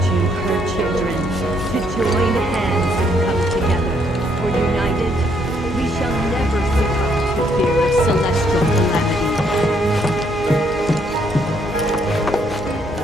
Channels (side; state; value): both; normal; correlation 0.70